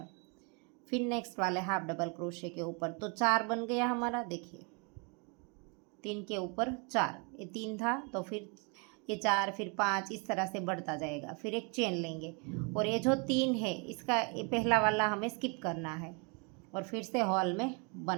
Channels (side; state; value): left; quieter; 33.7 dB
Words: फिर नेक्स्ट वाले हाफ डबल क्रोशे के ऊपर, तो 4 बन गया हमारा। देखिए 3 के ऊपर 4, ये 3 था तो फिर ये 4, फिर 5, इस तरह से बढ़ता जाएगा। फिर एक चेन लेंगे, और ये जो 3 है इसका ये पहला वाला हमें स्किप करना है और फिर से हॉल में